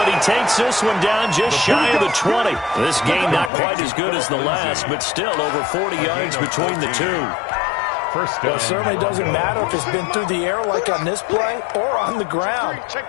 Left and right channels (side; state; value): right; drops out; at 3.5 s